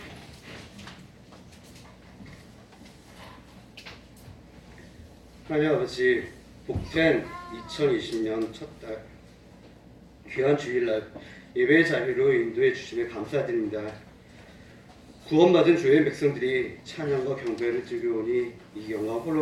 하나님 아버지, 복된 2020년 첫 달 귀한 주일날 예배의 자리로 인도해 주심에 감사드립니다. 구원받은 주의 백성들이 찬양과 경배를 드리오니 이 영광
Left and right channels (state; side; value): identical; both; correlation 1.00